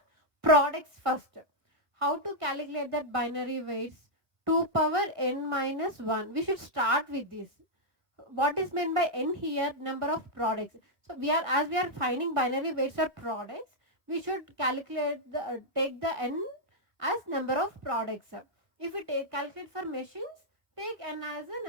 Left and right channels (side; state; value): left; late; 1.6 ms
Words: products first. How to calculate that binary weights? 2 power n minus 1. We should start with this. What is meant by n here? Number of products. So as we are finding binary weights for products, we should calculate take the n as number of products. If we calculate for machines, take n as a